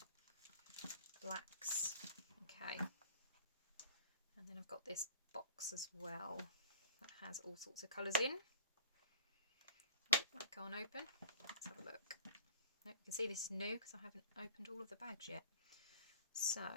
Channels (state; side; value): inverted; both; correlation -0.46